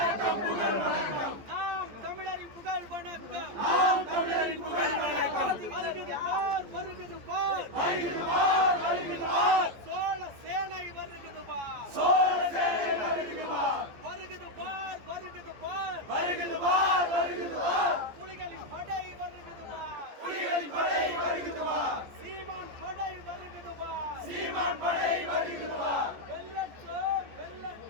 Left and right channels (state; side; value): late; left; 14 ms